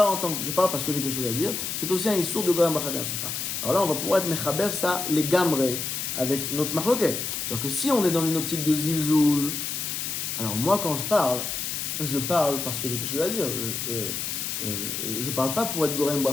parce que j'ai quelque chose à dire, c'est aussi un Issour de Gorem Bracha She'en Tzricha. Alors là, on va pouvoir être Mechaber ça, les Gamre, avec notre Machloket. C'est-à-dire que si on est dans une optique de Zilzoul, alors moi quand je parle parce que j'ai quelque chose à dire. Je parle pas pour être Gorem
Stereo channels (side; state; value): left; noise; hiss, 3 dB below the sound